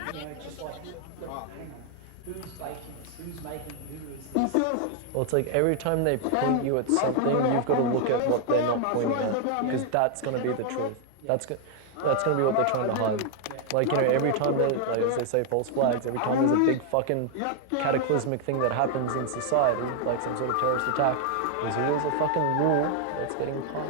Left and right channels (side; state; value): both; different; correlation 0.00